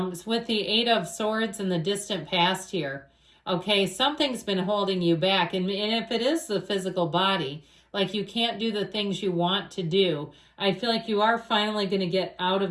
with the Eight of Swords in the distant past here, okay, something's been holding you back. And if it is the physical body, like you can't do the things you want to do, I feel like you are finally going to get out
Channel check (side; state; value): both; identical; correlation 1.00